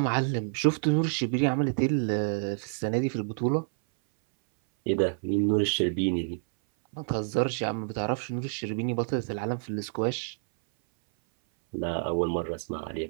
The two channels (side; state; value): left; silent; 58 dB below the other